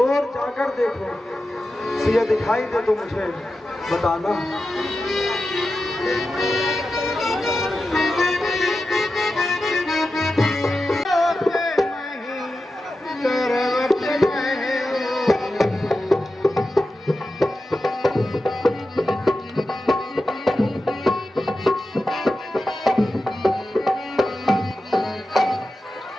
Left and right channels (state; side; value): normal; both; correlation 0.92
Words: जाकर देखो, सिया दिखाई दे तो मुझे बताना।